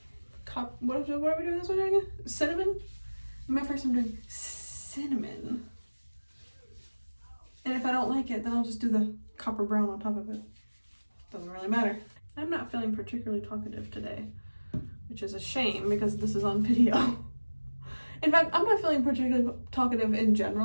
what are we doing this one again? Cinnamon? My first time doing cinnamon. And if I don't like it, then I'll just do the copper brown on top of it. Doesn't really matter. I'm not feeling particularly talkative today, which is a shame because this is on video. In fact, I'm not feeling particularly talkative in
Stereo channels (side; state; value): both; inverted; correlation -1.00